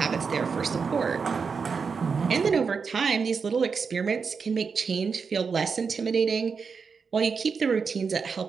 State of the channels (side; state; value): left; quieter; 5.5 dB